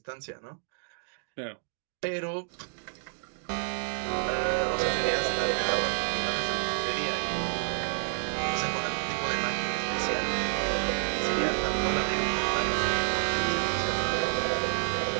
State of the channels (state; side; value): silent; left; digital silence